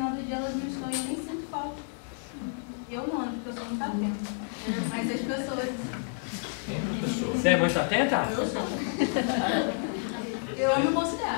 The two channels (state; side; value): silent; right; 58 dB below the other